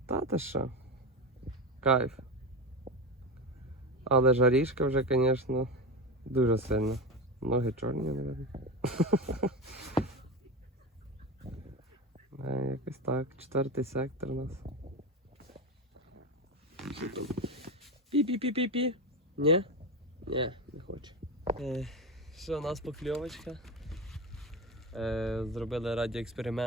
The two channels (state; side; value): normal; both; correlation 0.20